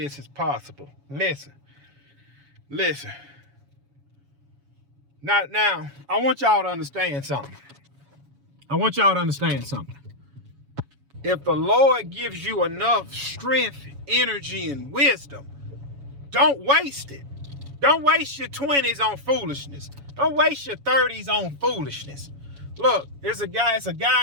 is possible. Listen. Now, I want y'all to understand something. If the Lord gives you enough strength, energy, and wisdom, don't waste it. Don't waste your 20s on foolishness. Don't waste your 30s on foolishness. Look, it's a guy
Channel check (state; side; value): late; left; 7.1 ms